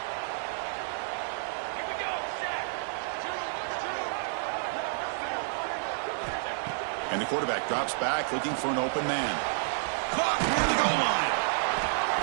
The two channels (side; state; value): left; silent; digital silence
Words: And the quarterback drops back looking for an open man. Caught near the goal line.